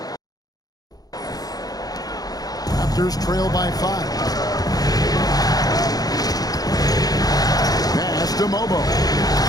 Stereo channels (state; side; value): late; right; 0.18 ms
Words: Raptors trail by 5. Pass to Mobo.